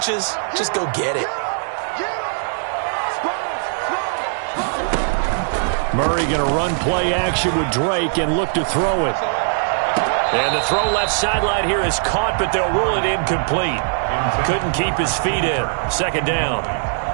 just go get it. Murray going to run play action with Drake and look to throw it. And the throw left sideline here is caught, but they'll rule it incomplete. Couldn't keep his feet in. 2nd down.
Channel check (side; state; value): left; silent; 66 dB below the other